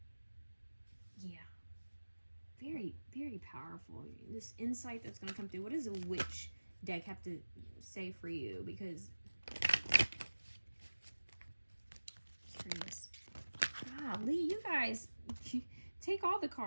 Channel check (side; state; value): both; inverted; correlation -1.00